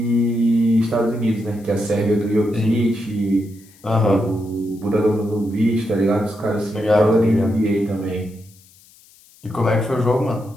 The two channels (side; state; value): left; noise; hiss, 27 dB below the sound